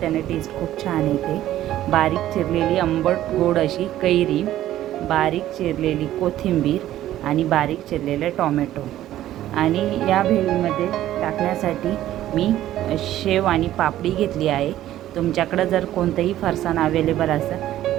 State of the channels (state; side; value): quieter; left; 13.3 dB